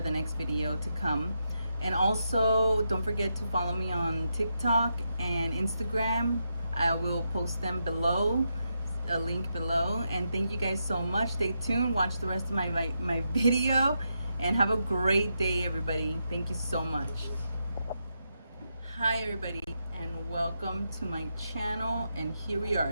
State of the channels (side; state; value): both; inverted; correlation -0.84